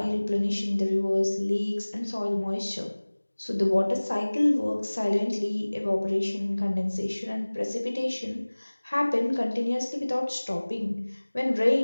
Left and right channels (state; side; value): inverted; both; correlation -1.00